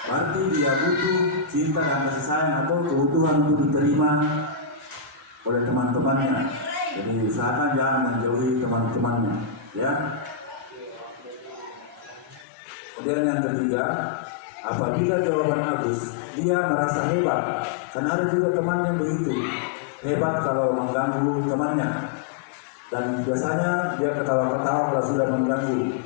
berarti dia butuh cinta dan kasih sayang atau kebutuhan untuk diterima oleh teman-temannya. Jadi usahakan jangan menjauhi teman-temannya, ya. Kemudian yang ketiga, apabila jawaban Agus, dia merasa hebat, karena ada juga teman yang begitu hebat kalau mengganggu temannya, dan biasanya dia ketawa-ketawa kalau sudah mengganggu,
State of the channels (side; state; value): right; drops out; at 12.5 s